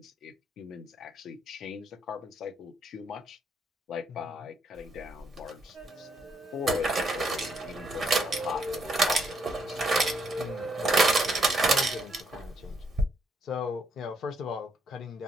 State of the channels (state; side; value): normal; both; correlation 0.73